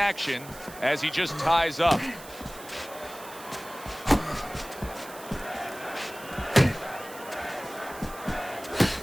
as he just ties up.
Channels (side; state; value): right; noise; hiss, 16 dB below the sound